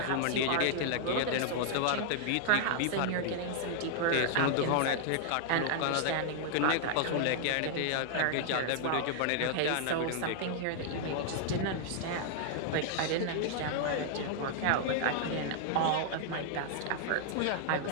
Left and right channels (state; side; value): different; both; correlation -0.01